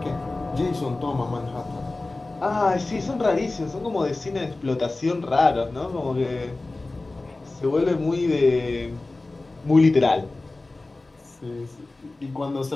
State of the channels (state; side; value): quieter; right; 3.1 dB